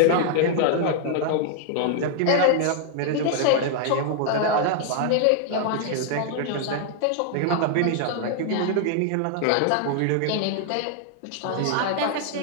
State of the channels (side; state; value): both; different; correlation 0.00